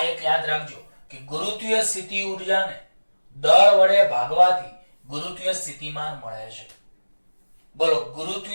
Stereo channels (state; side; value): inverted; both; correlation -1.00